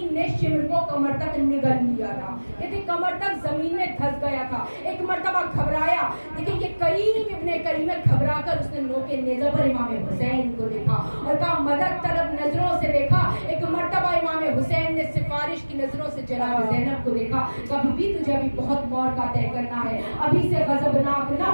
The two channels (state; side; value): inverted; both; correlation -1.00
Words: نے شمر کو کمر تک نگل لیا تھا، کہتے کمر تک زمین میں دھس گیا تھا، ایک مرتبہ گھبرایا، لیکن یہ کریم ابن کریم گھبرا کر اس نے نوکے نیزہ پر امام حسین کو دیکھا اور کہا مدد طلب نظروں سے دیکھا، ایک مرتبہ امام حسین نے سفارش کی نظروں سے جناب زینب کو دیکھا، کبھی بھی تجھے ابھی بہت موقع طے کرنا ہے، ابھی سے غضبناک نہ